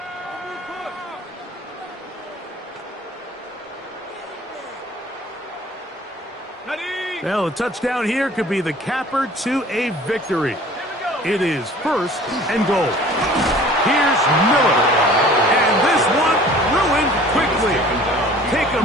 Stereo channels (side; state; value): both; normal; correlation 0.48